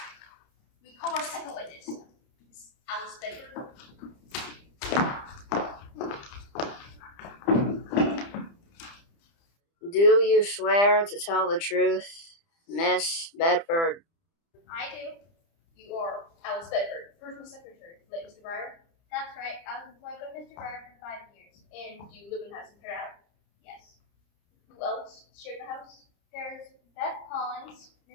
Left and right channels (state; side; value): late; right; 30 ms